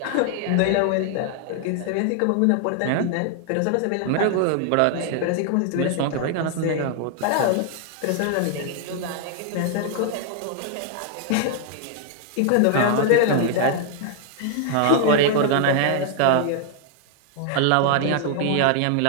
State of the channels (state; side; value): different; both; correlation 0.00